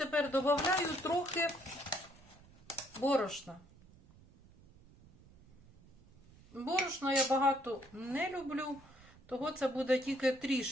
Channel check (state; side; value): noise; right; rumble, 24 dB below the sound